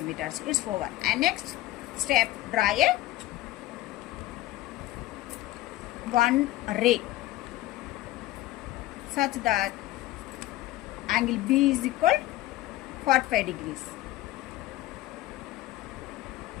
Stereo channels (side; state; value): right; quieter; 16.0 dB